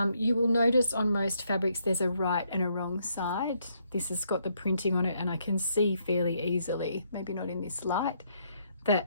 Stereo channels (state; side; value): inverted; both; correlation -0.73